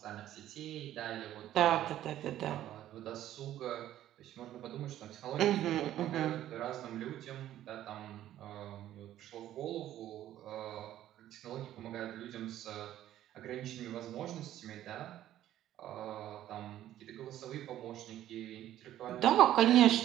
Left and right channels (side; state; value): left; quieter; 12.7 dB